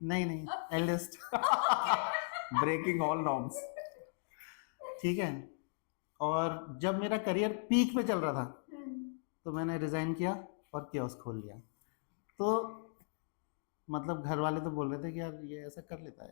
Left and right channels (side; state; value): right; silent; digital silence